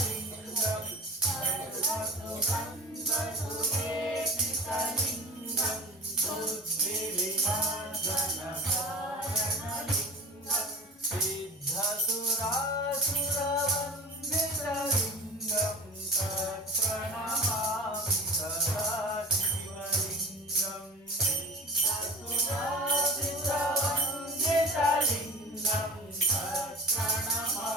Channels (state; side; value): normal; both; correlation 0.36